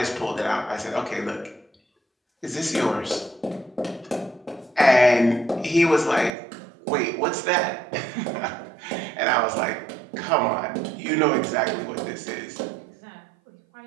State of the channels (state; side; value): drops out; left; at 6.3 s